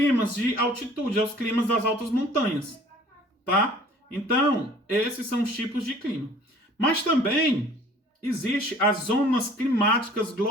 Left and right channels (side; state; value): both; normal; correlation 0.51